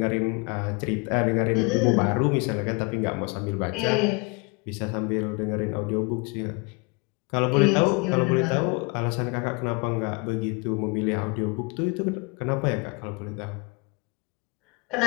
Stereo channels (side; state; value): right; quieter; 30.3 dB